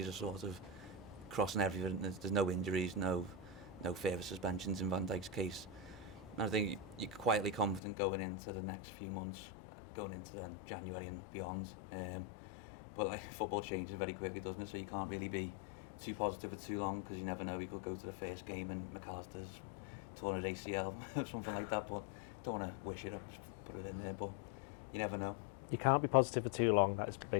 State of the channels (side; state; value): right; drops out; at 7.8 s